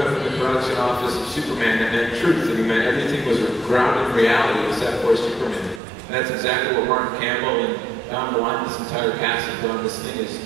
up in the production office of Superman that meant truth, and he meant everything was grounded in reality except for Superman. And that's exactly what Martin Campbell and Don Malone, this entire cast have done. This thing is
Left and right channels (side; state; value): left; drops out; at 5.8 s